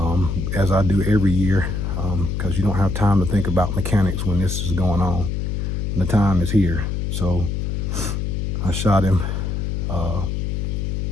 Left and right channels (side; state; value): left; noise; hum, 1 dB below the sound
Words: as I do every year, because you don't have time to think about mechanics when this is going on. And the time is here. So I shot him,